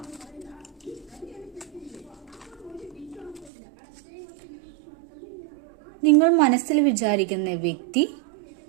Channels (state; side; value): drops out; left; at 3.5 s